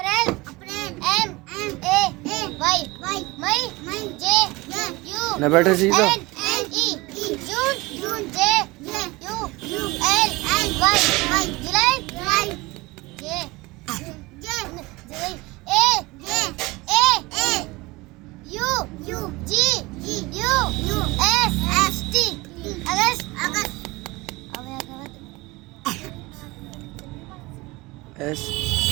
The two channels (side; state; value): left; quieter; 22.5 dB